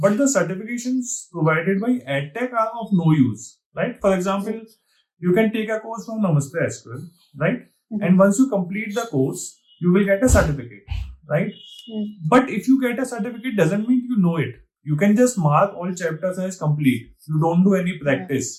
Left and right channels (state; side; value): identical; both; correlation 1.00